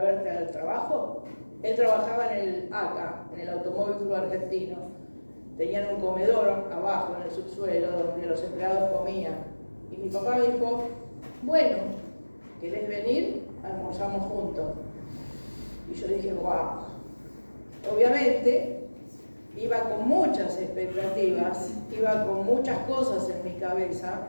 verte al trabajo? Él trabajaba en el ACA, en el Automóvil Club Argentino. Tenían un comedor abajo, en el subsuelo, donde los empleados comían. Y mi papá me dijo, bueno, ¿querés venir? Almorzamos juntos. Y yo dije, wow. Obviamente, iba con muchas expectativas, iba con muchas cosas en mi cabeza,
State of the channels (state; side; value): inverted; both; correlation -1.00